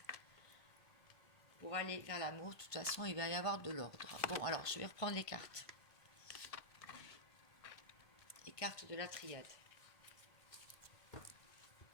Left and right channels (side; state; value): right; late; 1.5 ms